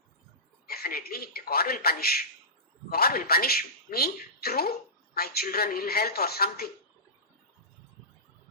Definitely, God will punish. God will punish me through my children, ill health or something.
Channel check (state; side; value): normal; both; correlation -0.19